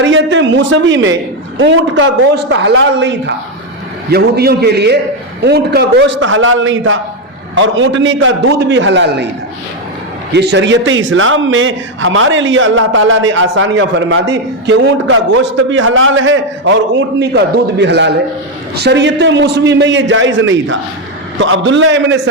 موسوی میں اونٹ کا گوشت حلال نہیں تھا، یہودیوں کے لیے اونٹ کا گوشت حلال نہیں تھا اور اونٹنی کا دودھ بھی حلال نہیں تھا۔ یہ شریعت اسلام میں ہمارے لیے اللہ تعالیٰ نے آسانیاں فرما دی کہ اونٹ کا گوشت بھی حلال ہے اور اونٹنی کا دودھ بھی حلال ہے۔ شریعت موسوی میں یہ جائز نہیں تھا۔ تو عبداللہ ابن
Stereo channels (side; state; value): both; normal; correlation 0.06